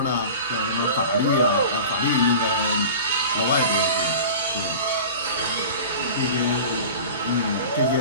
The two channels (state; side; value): inverted; both; correlation -0.36